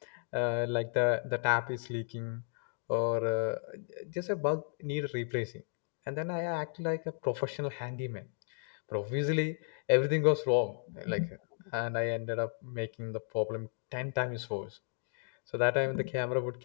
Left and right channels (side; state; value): right; silent; digital silence